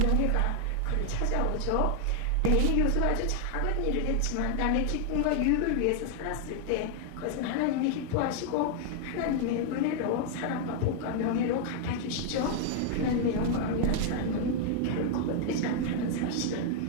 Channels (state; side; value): different; both; correlation 0.00